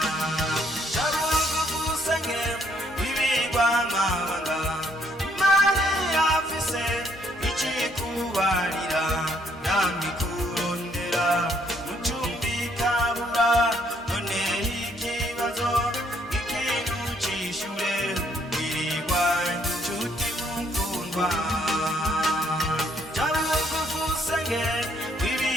Jabugusange wibirwa amabanga, Imana irafise icikubarira, namikurondera mucumbikabura, none ikibazo ikintu cishure, wirwa nshuti mukundwa. Jabugusange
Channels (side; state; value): both; normal; correlation 0.68